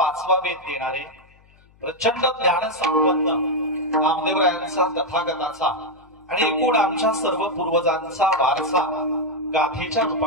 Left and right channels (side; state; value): left; noise; hum, 30 dB below the sound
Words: वेद देणारे प्रचंड ज्ञान संपन्न नामदेवरायांचा तथागताचा आणि एकूण आमच्या सर्व पूर्वजांचा वारसा गाथेच्या